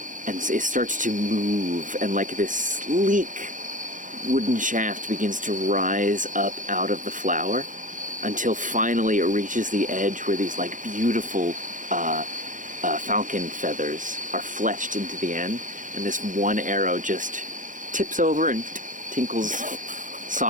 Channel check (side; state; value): left; late; 0.38 ms